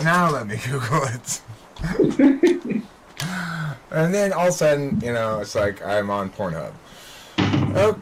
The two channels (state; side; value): identical; both; correlation 1.00